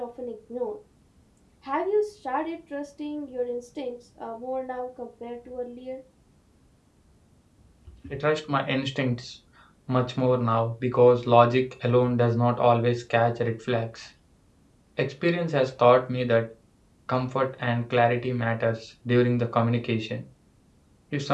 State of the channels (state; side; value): identical; both; correlation 1.00